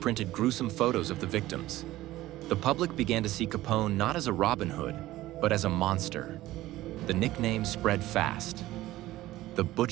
gruesome photos of the victims. The public began to see Capone not as a Robin Hood, but as a monster. The nickname spread fast: the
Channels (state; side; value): quieter; left; 16.2 dB